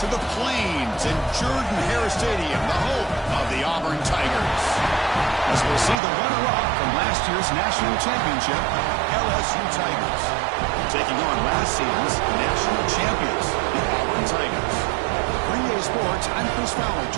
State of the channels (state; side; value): drops out; left; at 6.0 s